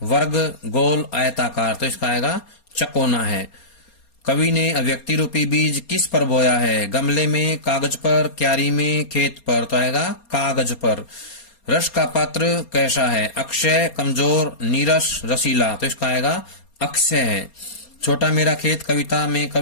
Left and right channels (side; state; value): right; late; 4.3 ms